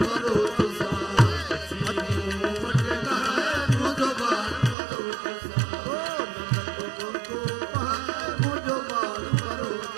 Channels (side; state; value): left; drops out; at 4.8 s